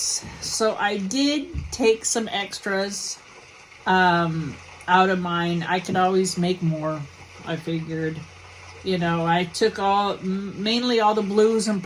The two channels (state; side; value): identical; both; correlation 1.00